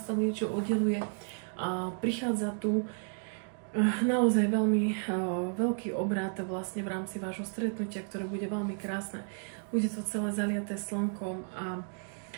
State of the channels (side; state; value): left; silent; 55 dB below the other